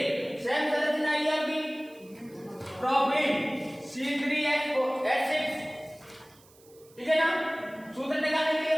सेम संरचना आई आपकी, प्रोपेन C3H6, ठीक है ना, सूत्र निकालने के लिए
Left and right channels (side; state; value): right; noise; hiss, 27 dB below the sound